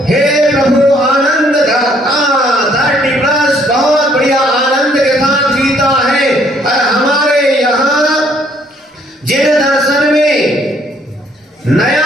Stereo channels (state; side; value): normal; both; correlation 0.65